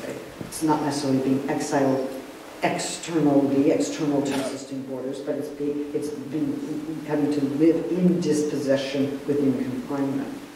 Okay? It's not necessarily being exiled external to existing borders, but it's been having to live in dispossession within confinement.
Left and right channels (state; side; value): identical; both; correlation 1.00